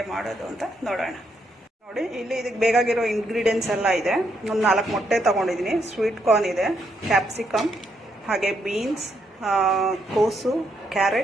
ಮಾಡೋದು ಅಂತ ನೋಡೋಣ. ನೋಡಿ, ಇಲ್ಲಿ ಇದಕ್ಕೆ ಬೇಕಾಗಿರೋ ಇಂಗ್ರೀಡಿಯೆಂಟ್ಸ್ ಎಲ್ಲ ಇದೆ. ಒಂದು 4 ಮೊಟ್ಟೆ ತೊಗೊಂಡಿದ್ದೀನಿ, ಸ್ವೀಟ್ ಕಾರ್ನ್ ಇದೆ, ಕ್ಯಾಪ್ಸಿಕಮ್, ಹಾಗೆ ಬೀನ್ಸ್, ಕೋಸು,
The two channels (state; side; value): normal; both; correlation 0.77